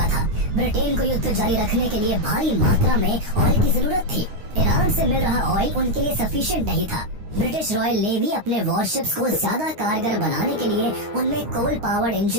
था। ब्रिटेन को युद्ध जारी रखने के लिए भारी मात्रा में ऑयल की जरूरत थी। ईरान से मिल रहा ऑयल उनके लिए सफिशिएंट नहीं था। ब्रिटिश रॉयल नेवी अपने वॉरशिप्स को ज्यादा कारगर बनाने के लिए उनमें कोल पावर्ड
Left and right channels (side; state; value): left; late; 9.6 ms